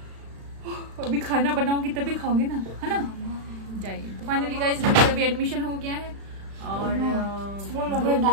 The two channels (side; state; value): left; late; 36 ms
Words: अभी खाना बनाओगी तभी खाओगे ना, है ना। जाइए। तो फाइनली गाइस अभी एडमिशन हो गया है और 2